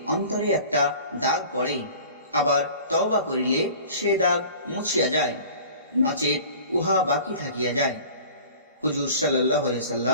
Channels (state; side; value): inverted; both; correlation -0.44